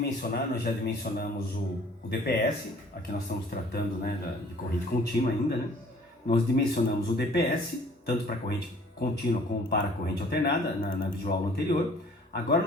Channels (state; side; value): normal; both; correlation 0.54